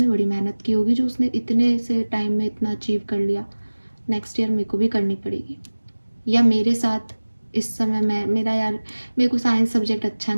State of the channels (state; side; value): inverted; both; correlation -1.00